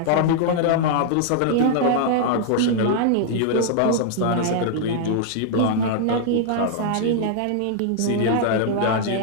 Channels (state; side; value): different; both; correlation -0.01